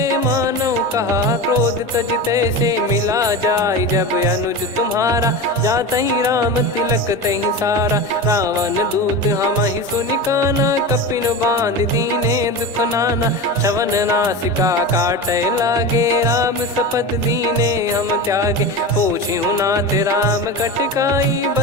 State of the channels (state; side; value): normal; both; correlation 0.25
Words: मानव कहा क्रोध तज तैसे मिला जाय जब अनुज तुम्हारा। जातहि राम तिलक तहि सारा रावण दूत हम ही सुनि काना। कपिन बांध दीने दुख नाना श्रवण नासिका काटे लागे। राम शपथ दीने हम त्यागे पूछ्यु नाथ राम कटकाई।